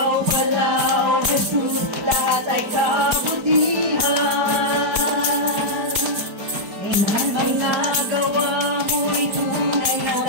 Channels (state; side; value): late; left; 4.6 ms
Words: pala, O Jesus, lahat ay kabutihan. Amen. Ang nagawa mo'y